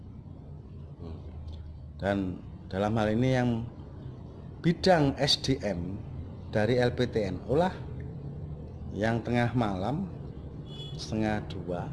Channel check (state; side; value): identical; both; correlation 1.00